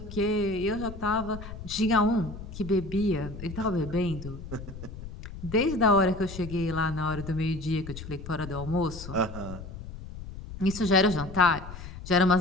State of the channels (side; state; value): left; noise; rumble, 11 dB below the sound